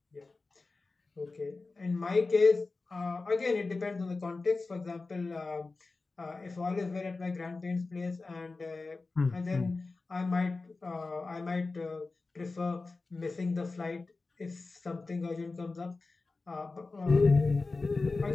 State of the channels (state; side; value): quieter; right; 3.7 dB